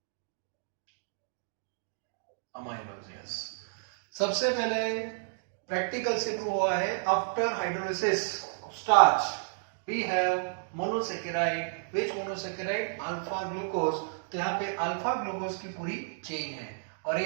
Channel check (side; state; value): left; silent; digital silence